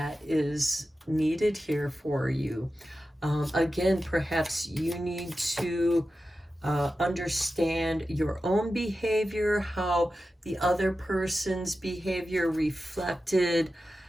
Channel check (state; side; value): normal; both; correlation 0.92